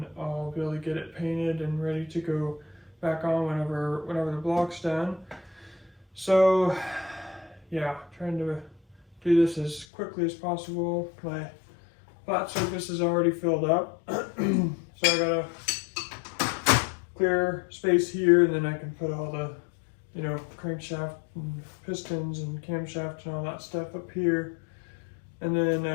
I'll be able to get it painted and ready to go back on whenever the block's done. So yeah, trying to do this as quickly as possible. My flat surface is already filled up, so I gotta clear space here, and then I can put all the, you know, crankshaft and pistons and camshaft and all that stuff up here. And then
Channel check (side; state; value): right; drops out; at 9.9 s